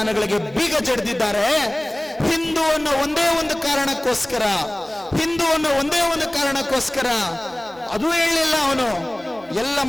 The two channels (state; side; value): noise; right; hum, 26 dB below the sound